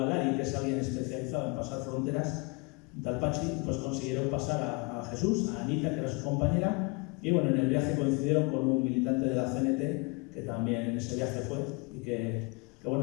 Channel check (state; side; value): quieter; right; 29.9 dB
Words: que es alguien especializado en pasar fronteras, tal Pachi, pues consiguieron pasar a Jesús, a Anita, que era su compañera, y bueno, en el viaje coincidieron con un militante de la CNT, que también en ese viaje fue, y que